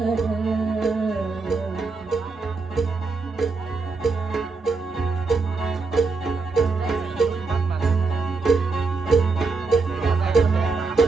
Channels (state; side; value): quieter; left; 4.2 dB